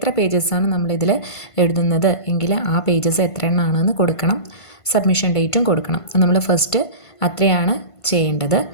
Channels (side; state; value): right; late; 1.5 ms